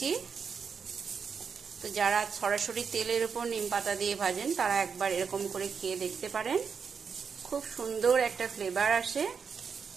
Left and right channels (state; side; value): quieter; left; 6.1 dB